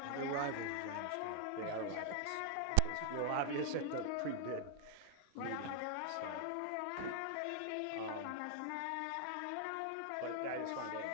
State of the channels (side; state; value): both; different; correlation 0.00